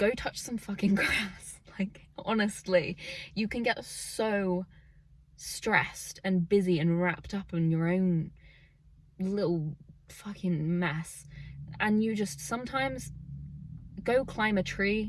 touch some fucking grass. Like, honestly, you can get so stressed and busy and wrapped up in your own little fucking mess, and you just sometimes go climb a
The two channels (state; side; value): identical; both; correlation 1.00